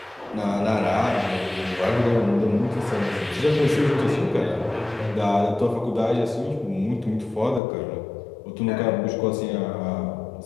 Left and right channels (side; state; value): right; drops out; at 7.6 s